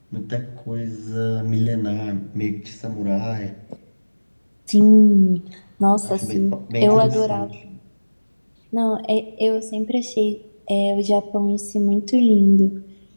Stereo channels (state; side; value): inverted; both; correlation -1.00